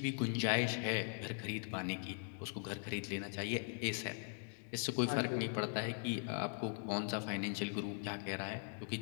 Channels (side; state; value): right; silent; 51 dB below the other